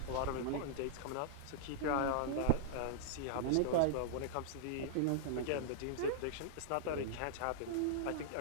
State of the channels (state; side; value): different; both; correlation -0.01